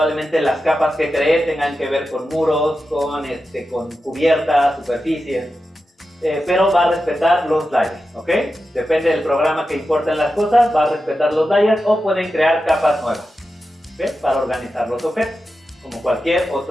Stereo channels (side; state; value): both; normal; correlation 0.91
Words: las capas que cree tengan que ver con muros, con cubiertas, superficies, pero va a respetar los layers, ¿ok? Depende del programa que importen las cosas, va a respetar los layers o pueden crear capas nuevas, ¿ok? Para organizar los objetos, como cualquier